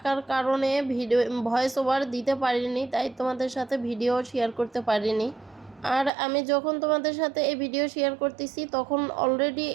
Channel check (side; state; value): left; drops out; at 6.1 s